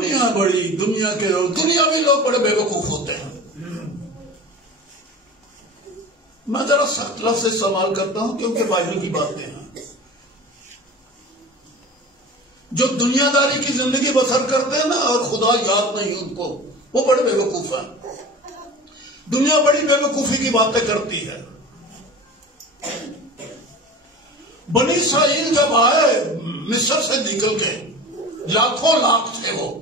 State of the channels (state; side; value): normal; both; correlation 0.35